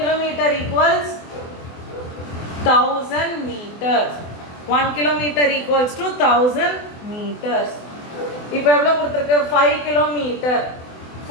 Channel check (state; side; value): late; right; 24 ms